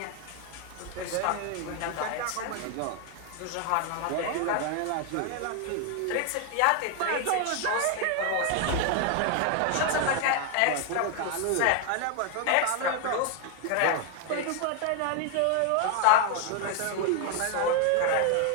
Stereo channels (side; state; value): both; different; correlation 0.01